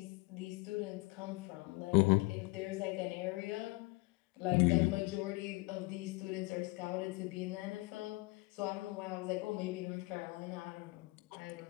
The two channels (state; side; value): quieter; right; 24.6 dB